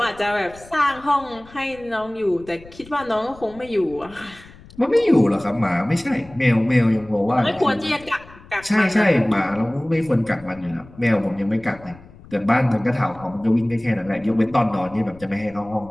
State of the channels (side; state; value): left; noise; rumble, 22 dB below the sound